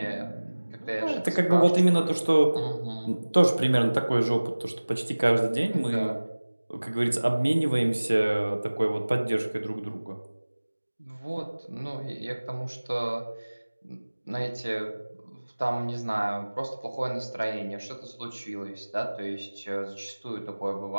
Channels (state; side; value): inverted; both; correlation -1.00